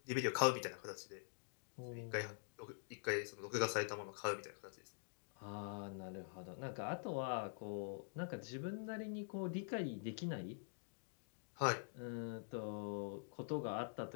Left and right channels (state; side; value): silent; right; digital silence